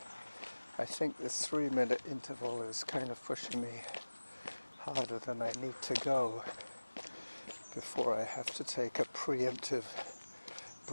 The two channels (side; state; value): both; inverted; correlation -1.00